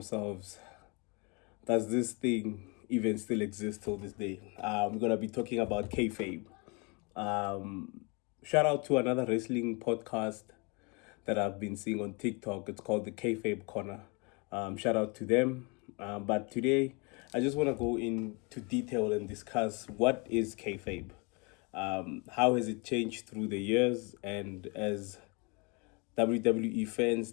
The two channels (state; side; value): quieter; right; 30.9 dB